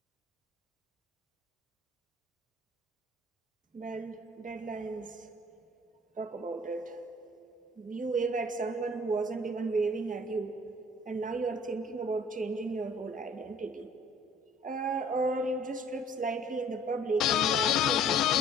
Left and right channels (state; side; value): normal; both; correlation 0.53